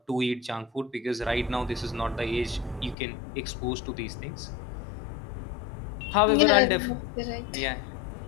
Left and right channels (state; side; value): drops out; right; at 3.0 s